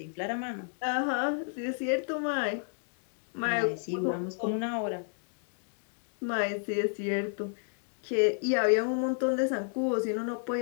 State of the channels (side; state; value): right; silent; digital silence